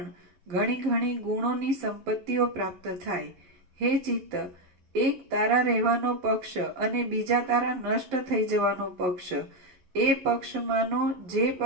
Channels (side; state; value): left; late; 11 ms